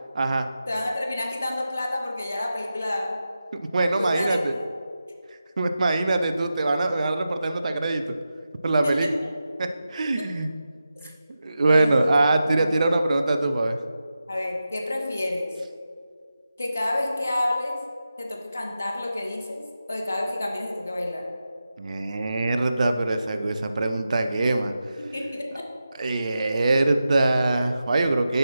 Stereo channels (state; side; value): inverted; both; correlation -0.91